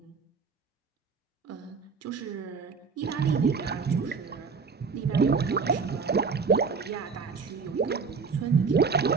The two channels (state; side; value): quieter; left; 5.2 dB